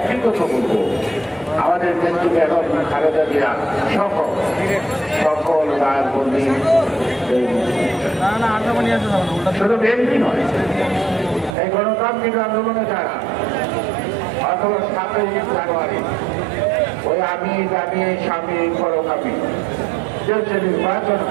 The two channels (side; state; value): left; drops out; at 11.6 s